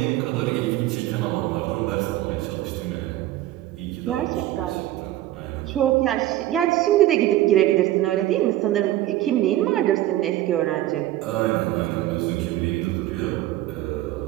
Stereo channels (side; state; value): left; quieter; 14.7 dB